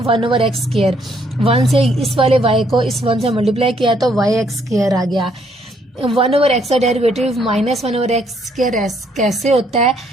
1 ओवर एक्स स्क्वायर। 1 से इस वाले y को इस 1 से मल्टीप्लाई किया तो वाई एक्स स्क्वायर आ गया। 1 ओवर एक्स का डेरिवेटिव -1 ओवर एक्स स्क्वायर कैसे होता है,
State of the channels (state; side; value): normal; both; correlation 0.69